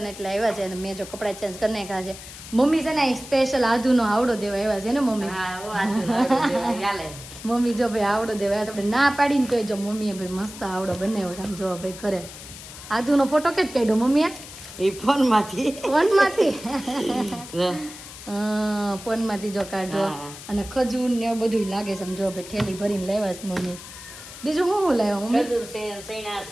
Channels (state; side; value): noise; left; hiss, 14 dB below the sound